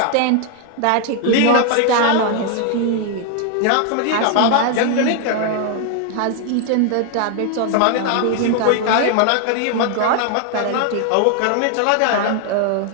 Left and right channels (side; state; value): both; different; correlation 0.00